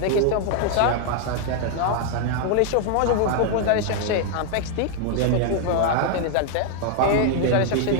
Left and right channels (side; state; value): both; different; correlation 0.00